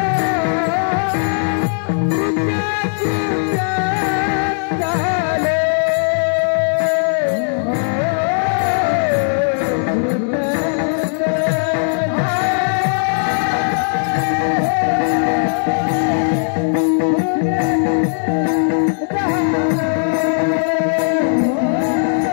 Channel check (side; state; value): right; silent; 68 dB below the other